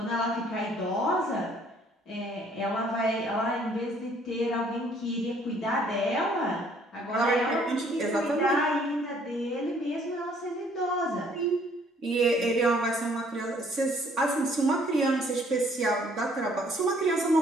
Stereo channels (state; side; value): normal; both; correlation 0.61